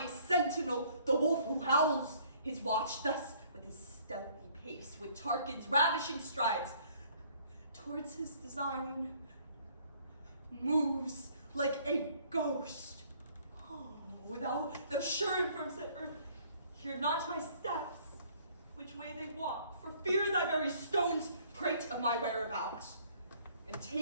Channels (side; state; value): both; inverted; correlation -0.59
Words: sentinel, the wolf who howls his watch thus with his stealthy pace, with Tarquin's ravishing strides, towards his design moves like a ghost. Oh, thou sure and firm set earth, hear not my steps, which way they walk, for fear thy very stones prate of my whereabouts, and